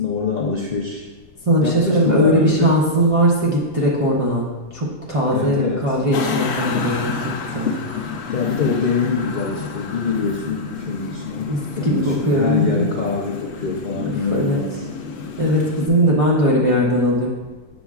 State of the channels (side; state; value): left; noise; rumble, 27 dB below the sound